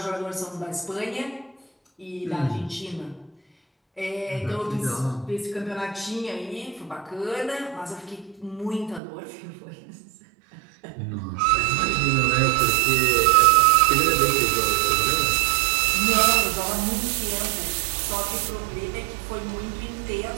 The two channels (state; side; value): drops out; left; at 9.0 s